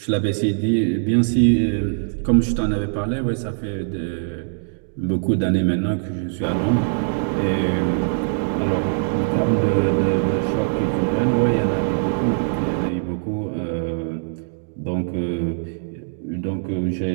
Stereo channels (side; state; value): left; silent; digital silence